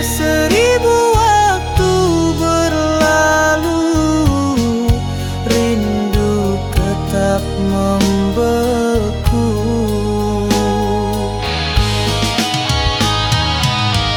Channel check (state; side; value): identical; both; correlation 1.00